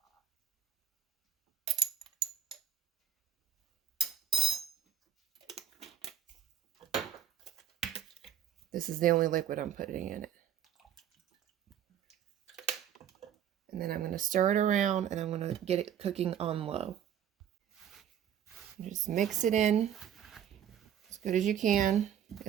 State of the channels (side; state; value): left; quieter; 9.5 dB